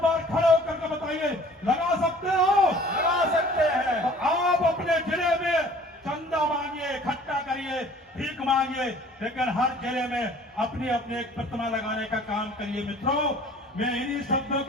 बार खड़े होकर के बताइए, लगा सकते हो? लगा सकते हैं। तो आप अपने जिले में चंदा मांगिए, इकट्ठा करिए, भीख मांगिए, लेकिन हर जिले में अपनी अपनी एक प्रतिमा लगाने का काम करिए। मित्रों मैं इन्हीं शब्दों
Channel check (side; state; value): both; normal; correlation 0.50